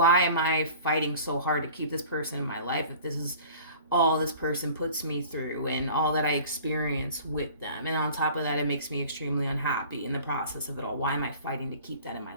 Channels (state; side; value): inverted; both; correlation -0.44